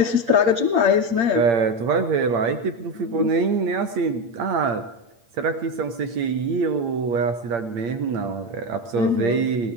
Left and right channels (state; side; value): late; left; 8.7 ms